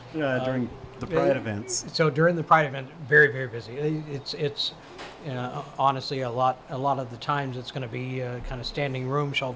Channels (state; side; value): identical; both; correlation 1.00